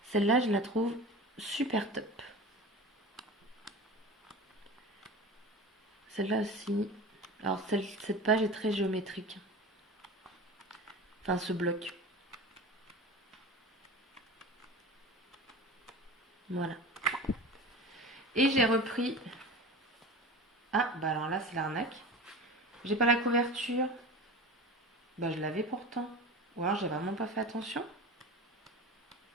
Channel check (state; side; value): normal; both; correlation 0.32